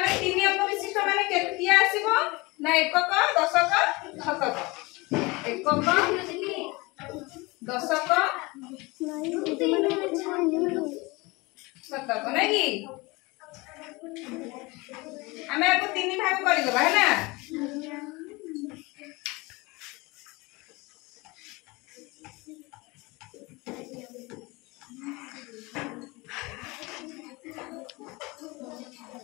3 अंक विशिष्ट माने केतिया आसीबो ना एकक दशक शतक एकक दशक शतक नै की हमें आपको 3 भाग कर देबा है ना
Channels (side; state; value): right; quieter; 24.3 dB